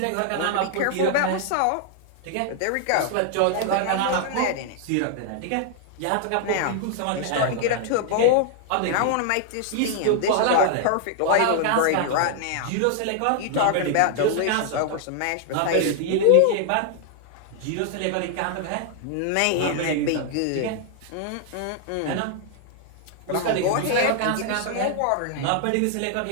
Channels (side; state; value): both; different; correlation 0.00